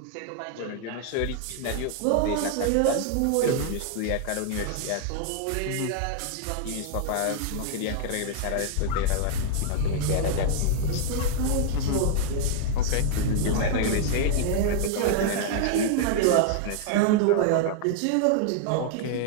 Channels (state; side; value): different; both; correlation 0.00